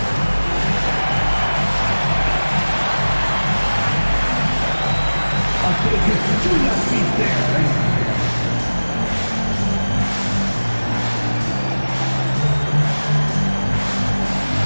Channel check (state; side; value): inverted; both; correlation -1.00